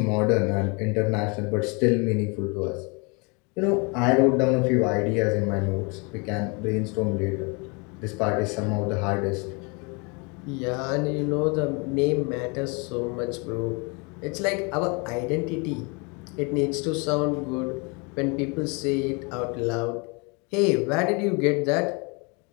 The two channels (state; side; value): quieter; right; 31.3 dB